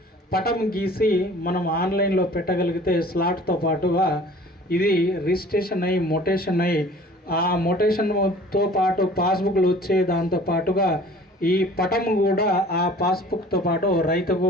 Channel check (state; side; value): normal; both; correlation 0.48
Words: పటం గీసి మనం ఆన్లైన్లో పెట్టగలిగితే స్లాట్తో పాటుగా ఇది రిజిస్ట్రేషన్ అయ్యి మొటేషన్ అయ్యి ఆ మొటేషన్తో పాటు పాస్బుక్లు వచ్చే దాంతో పాటుగా ఈ పటం కూడా ఆ పాస్బుక్తో పాటు రైతుకు